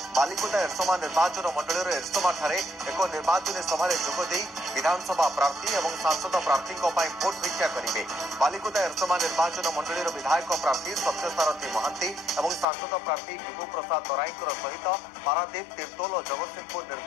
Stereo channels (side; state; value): right; drops out; at 12.7 s